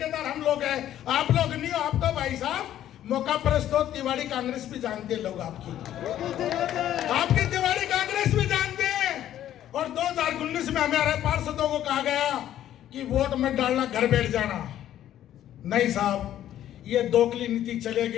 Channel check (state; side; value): quieter; right; 11.8 dB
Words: हम लोग हैं। आप लोग नहीं हो। आप तो भाई साहब मौका परस्त हो। तिवाड़ी कांग्रेस भी जानते हैं लोग आपकी तिवाड़ी कांग्रेस भी जानते हैं। और 2019 में हमारे पार्षदों को कहा गया कि वोट मत डालना, घर बैठ जाना। नहीं साहब, ये दोगली नीति